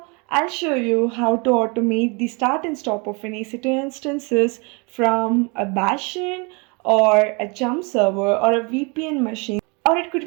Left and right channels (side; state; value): left; quieter; 30.7 dB